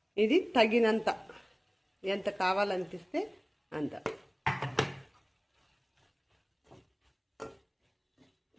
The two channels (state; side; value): identical; both; correlation 1.00